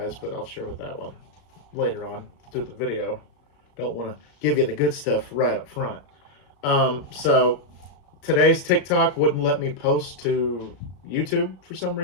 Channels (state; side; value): late; right; 35 ms